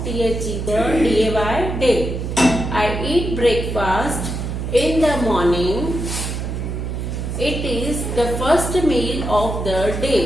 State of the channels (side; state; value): right; noise; hum, 4 dB below the sound